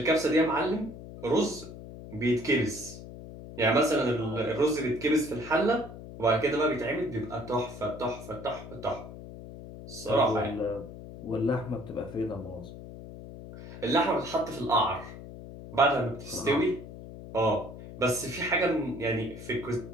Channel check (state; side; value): noise; left; hum, 13 dB below the sound